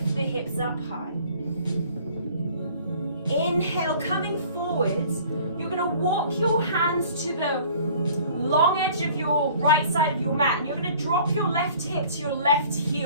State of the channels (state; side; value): inverted; both; correlation -0.51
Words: the hips up high. Inhale, coming forwards. You're going to walk your hands to the long edge of your right side of your mat, and you're going to drop your left hip to your left